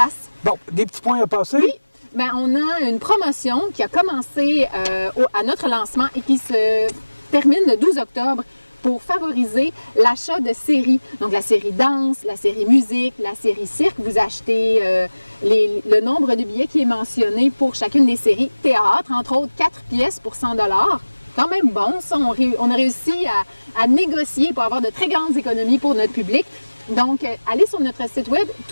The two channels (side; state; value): both; inverted; correlation -1.00